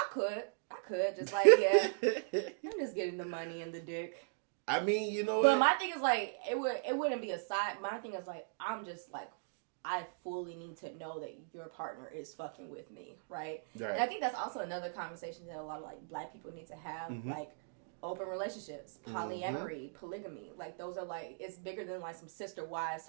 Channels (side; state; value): left; silent; digital silence